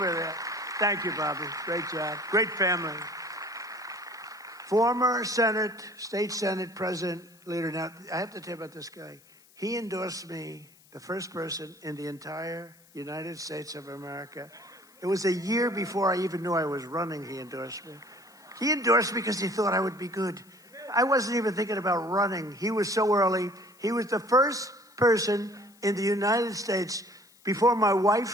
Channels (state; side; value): noise; left; hiss, 28 dB below the sound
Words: there. Thank you, Bobby. Great job. Great family. Former State Senate President Leader. Now, I have to tell you about this guy. He endorsed me, the first person in the entire United States of America. It was a year before I even knew I was running, he endorsed me. He endorsed me because he thought I would be good. I wasn't even thinking about running. He was so early. He was the first person in the United States before my